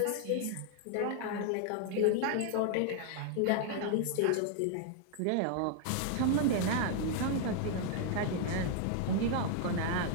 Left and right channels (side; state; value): both; different; correlation 0.00